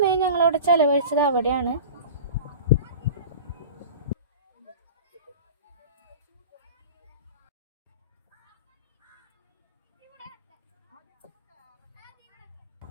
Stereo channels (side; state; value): both; inverted; correlation -0.35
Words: ഞങ്ങളവിടെ ചിലവഴിച്ചത് അവിടെയാണ്.